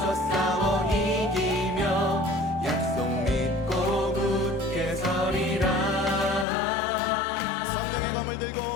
싸워 이기며 약속 믿고 굳게 서리라. 성령의 검을 들고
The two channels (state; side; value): drops out; right; at 6.5 s